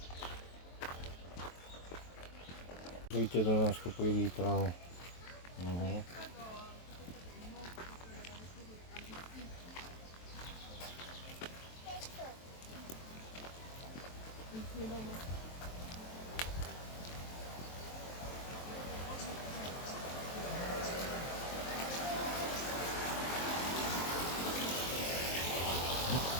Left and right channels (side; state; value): right; late; 23 ms